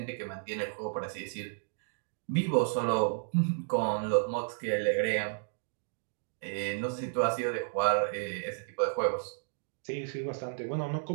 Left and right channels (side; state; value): left; silent; digital silence